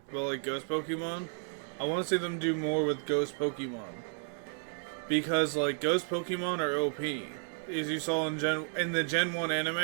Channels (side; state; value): left; silent; 56 dB below the other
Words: but like Ghost Pokemon. I want to see them do more with Ghost Pokemon. Because like Ghost Pokemon are OP. As you saw in the Gen 1